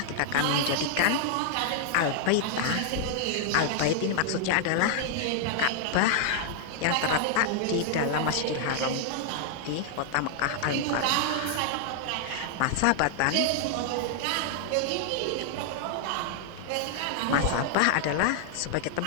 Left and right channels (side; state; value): both; different; correlation -0.01